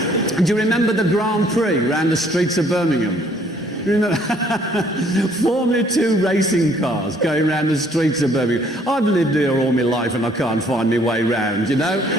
And do you remember the Grand Prix around the streets of Birmingham? You remember? Formula 2 racing cars going around the streets of Birmingham. I've lived here all my life and I can't find my way round, you know?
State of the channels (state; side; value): normal; both; correlation 0.62